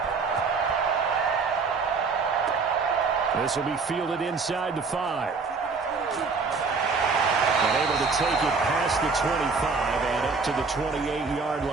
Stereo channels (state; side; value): quieter; left; 4.6 dB